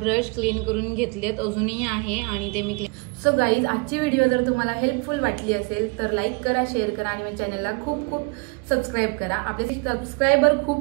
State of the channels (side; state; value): left; quieter; 30.3 dB